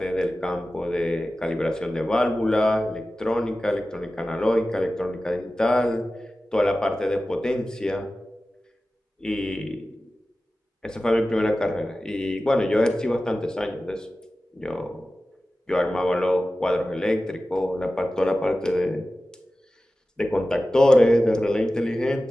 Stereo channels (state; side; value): normal; both; correlation 0.95